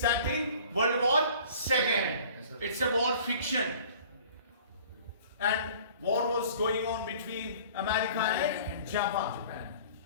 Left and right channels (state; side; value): inverted; both; correlation -0.49